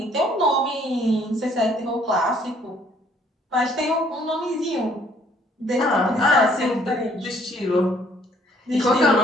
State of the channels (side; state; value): both; normal; correlation 0.62